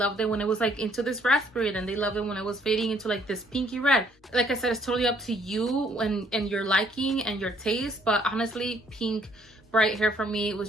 it when it was like into this raspberry, then they loved it when it was fading into like this pinky red. Like I said, it's totally up to you and your liking and your taste, but honestly, pink bright hair for me was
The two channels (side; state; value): both; normal; correlation 0.65